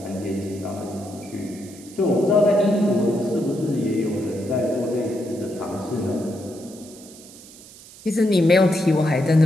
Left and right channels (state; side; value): noise; right; hiss, 20 dB below the sound